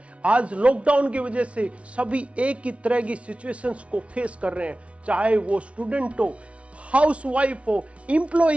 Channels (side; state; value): left; late; 0.062 ms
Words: आज लॉकडाउन की वजह से सभी एक ही तरह की सिचुएशंस को फेस कर रहे हैं, चाहे वो स्टूडेंट हो, हाउसवाइफ हो,